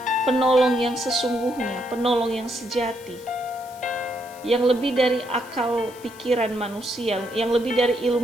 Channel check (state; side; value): noise; left; hiss, 21 dB below the sound